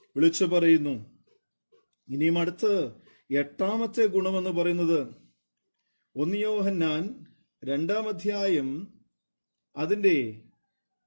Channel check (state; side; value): inverted; both; correlation -1.00